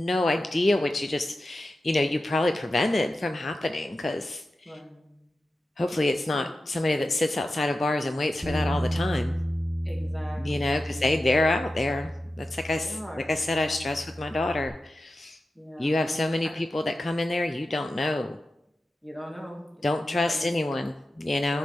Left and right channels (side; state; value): both; normal; correlation 0.93